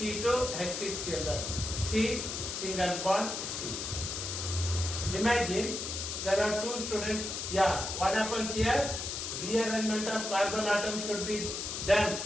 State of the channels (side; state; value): left; noise; hiss, 4 dB below the sound